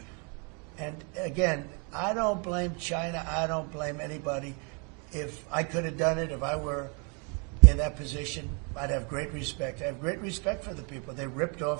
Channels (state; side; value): quieter; left; 35.2 dB